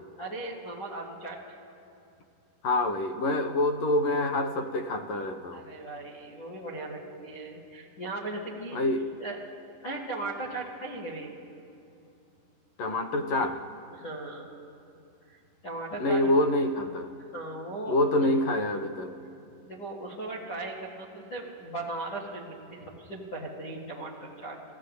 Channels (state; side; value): late; right; 11 ms